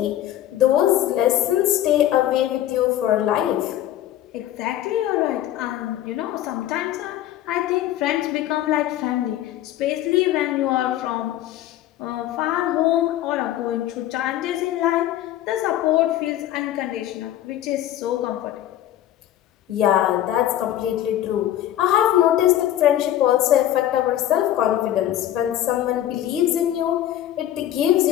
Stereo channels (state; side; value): quieter; right; 12.6 dB